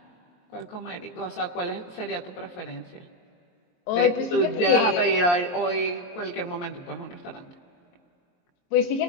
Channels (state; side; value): late; right; 23 ms